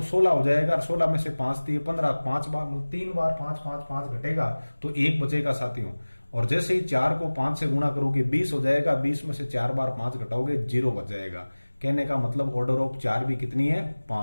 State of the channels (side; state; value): both; inverted; correlation -1.00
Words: 16 हो जाएगा, 16 में से 5 दिए 15, 5 बार 3 बार 5 5 5 घटेगा तो 1 बचेगा साथियों। और जैसे ही 4 को 5 से गुणा करोगे 20 हो जाएगा, 20 में से 4 बार 5 घटाओगे 0 बच जाएगा। कहने का मतलब ऑर्डर ऑफ 4 भी कितनी है